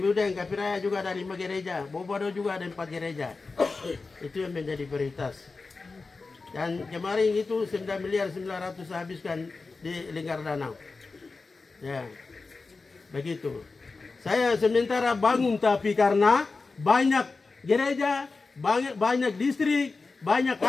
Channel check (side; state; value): right; quieter; 4.0 dB